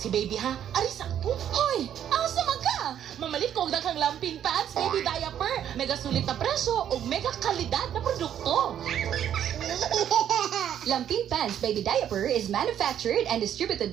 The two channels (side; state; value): left; quieter; 10.0 dB